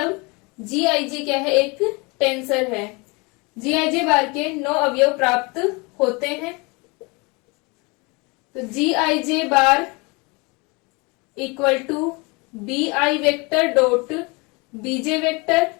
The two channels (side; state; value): right; quieter; 28.0 dB